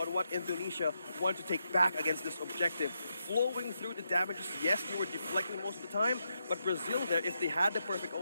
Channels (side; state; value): both; inverted; correlation -0.83